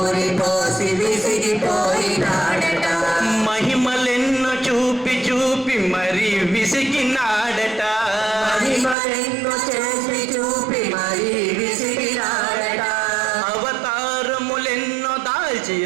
పోసి విసిగిపోయినాడట. మహిమలెన్నో చూపి చూపి మరి విసిగినాడట. మహిమలెన్నో చేసి చూపి మరి విసిగినాడట. అవతారములెన్నో దాల్చి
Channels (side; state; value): left; drops out; at 9.0 s